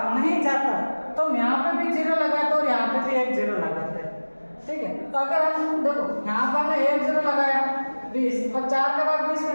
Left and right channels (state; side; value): inverted; both; correlation -1.00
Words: नहीं जाता तो हम यहाँ पे भी 0 लगाते और यहाँ पे भी एक 0 लगाते हैं, ठीक है। तो अगर हम देखो यहाँ पर हमने एक 0 लगाया 20, और 4 का भाग 20